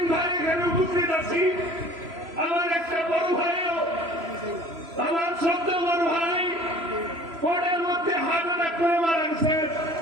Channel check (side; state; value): left; late; 3.0 ms